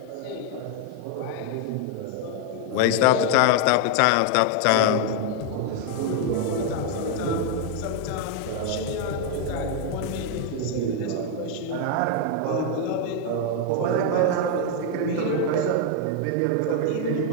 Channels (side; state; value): both; different; correlation 0.00